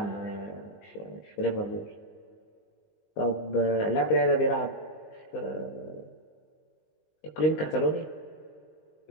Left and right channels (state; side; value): late; right; 19 ms